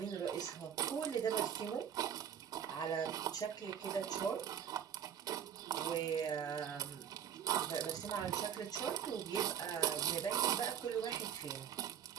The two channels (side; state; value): left; quieter; 8.9 dB